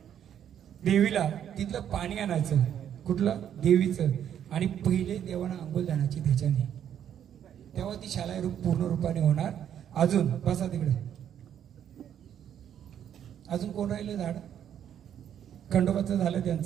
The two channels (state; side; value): quieter; left; 9.6 dB